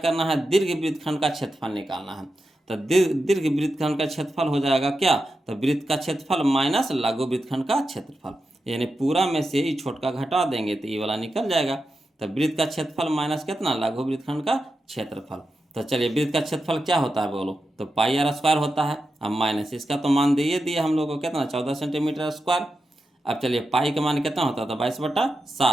है दीर्घ वृत्तखंड का क्षेत्रफल निकालना है, तो दीर्घ वृत्तखंड का क्षेत्रफल हो जाएगा क्या, तो वृत्त का क्षेत्रफल माइनस लघु वृत्तखंड का क्षेत्रफल, यानी पूरा में से ही छोटका घटा देंगे तो ये वाला निकल जाएगा। तो वृत्त का क्षेत्रफल माइनस कितना लघु वृत्तखंड का क्षेत्रफल, तो चलिए वृत्त का क्षेत्रफल क्या होता है बोलो, तो पाई आर स्क्वायर होता है, अब माइनस इसका तो मान दिए दिया हम लोग को कितना 14 सेंटीमीटर स्क्वायर। अब चलिए पाई का मान कितना होता था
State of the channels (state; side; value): normal; both; correlation 0.89